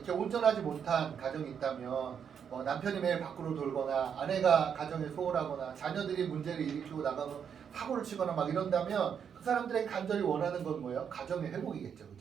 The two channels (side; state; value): left; quieter; 7.6 dB